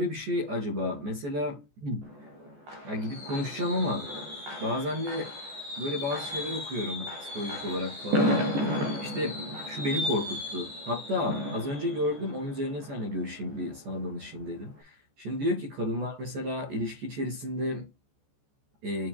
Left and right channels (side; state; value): left; late; 14 ms